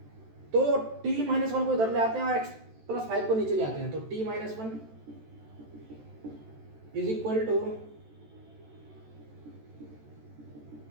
तो t-1 को इधर ले आते हैं और x+5 को नीचे ले आते हैं, तो t-1 is equal to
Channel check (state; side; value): late; left; 14 ms